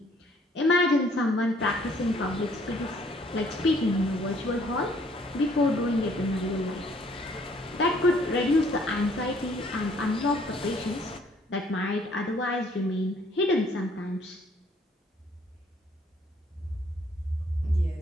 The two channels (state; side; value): normal; both; correlation 0.62